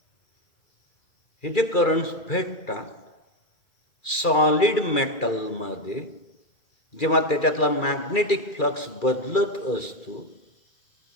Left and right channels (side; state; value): right; late; 2.3 ms